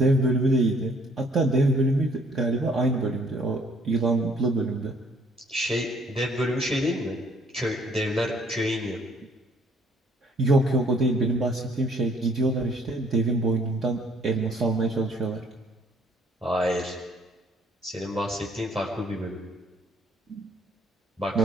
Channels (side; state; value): both; normal; correlation 0.61